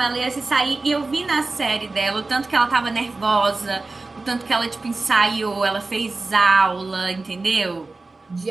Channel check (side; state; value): left; quieter; 3.5 dB